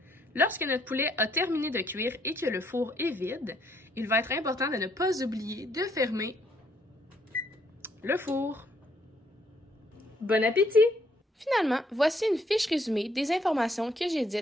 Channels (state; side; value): normal; both; correlation 0.69